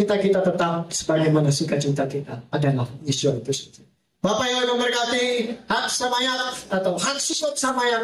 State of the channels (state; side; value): identical; both; correlation 1.00